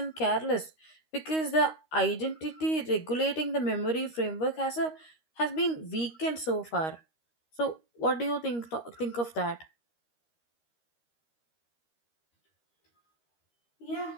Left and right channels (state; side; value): late; right; 13 ms